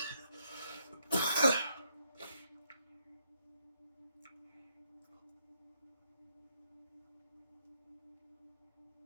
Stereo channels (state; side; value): inverted; both; correlation -0.75